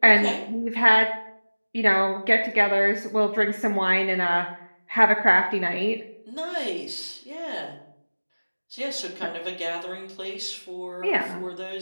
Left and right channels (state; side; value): inverted; both; correlation -1.00